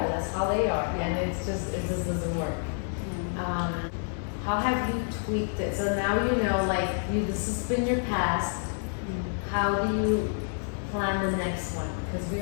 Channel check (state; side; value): silent; right; 59 dB below the other